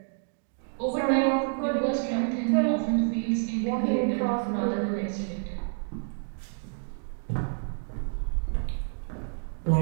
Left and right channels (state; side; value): silent; left; digital silence